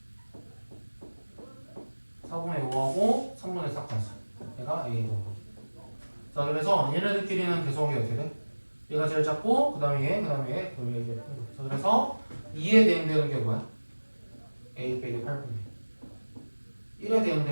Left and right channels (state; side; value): inverted; both; correlation -1.00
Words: 4분의 5하고 3분의 4까지 얘가 A 더하기. 자, 그래서 얘네들끼리는 계속이 어떻게 돼? 얘가 제일 작고 그 다음에 얘, 그 다음에 얘, 그 다음에 얘. 자, 그래서 2에 대응되는 게 뭐야? A 빼기 8분의 1. 1에